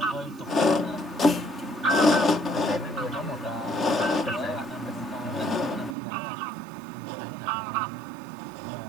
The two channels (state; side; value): drops out; left; at 6.0 s